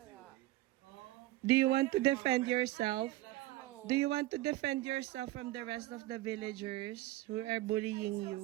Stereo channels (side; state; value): left; quieter; 17.2 dB